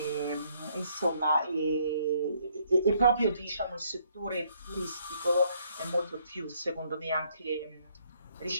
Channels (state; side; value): inverted; both; correlation -0.68